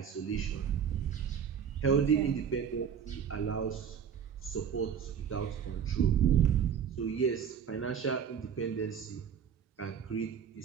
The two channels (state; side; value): quieter; left; 7.8 dB